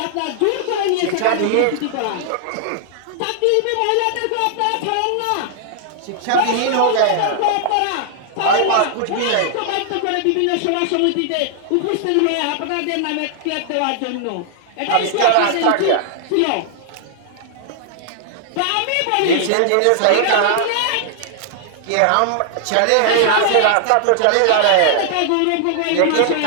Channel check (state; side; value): different; both; correlation 0.00